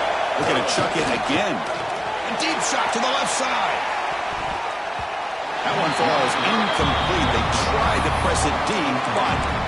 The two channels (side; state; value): both; identical; correlation 1.00